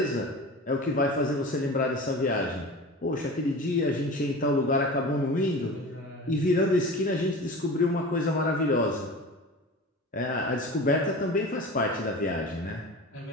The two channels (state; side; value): normal; both; correlation 0.34